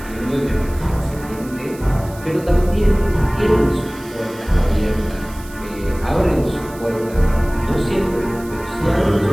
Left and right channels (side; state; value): right; noise; hiss, 20 dB below the sound